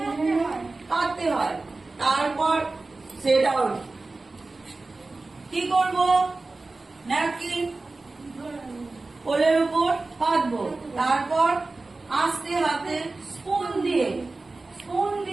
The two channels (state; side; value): quieter; left; 3.4 dB